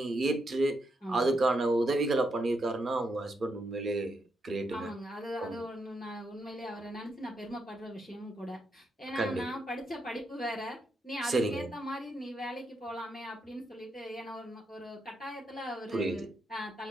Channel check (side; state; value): both; normal; correlation 0.81